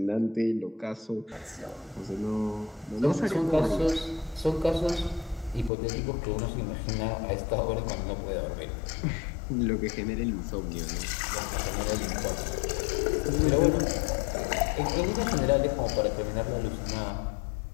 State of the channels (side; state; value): right; drops out; at 5.7 s